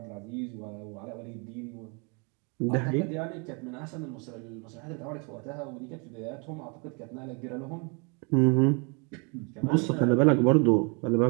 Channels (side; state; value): left; quieter; 33.7 dB